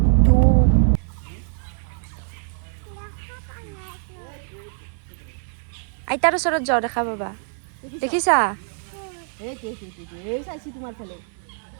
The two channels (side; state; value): left; silent; 57 dB below the other